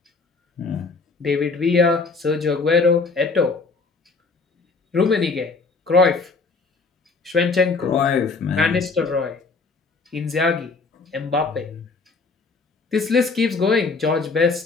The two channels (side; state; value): right; quieter; 4.2 dB